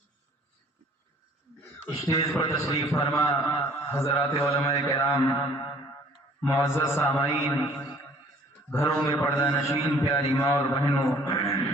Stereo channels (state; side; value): normal; both; correlation 0.55